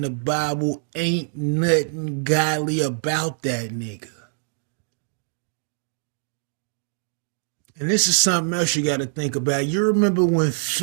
the Bible, ain't nothing godly about that nigga. And this is something else you got to think about. You remember when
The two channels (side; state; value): left; silent; digital silence